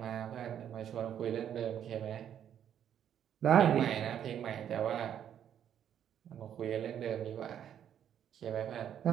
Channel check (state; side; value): quieter; left; 9.6 dB